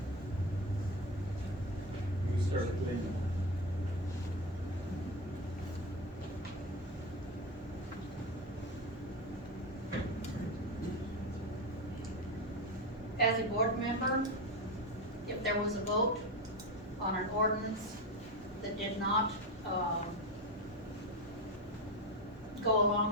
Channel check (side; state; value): both; normal; correlation 0.18